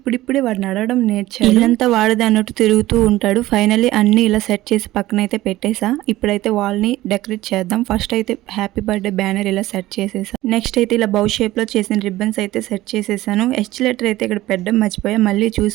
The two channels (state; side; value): quieter; left; 16.6 dB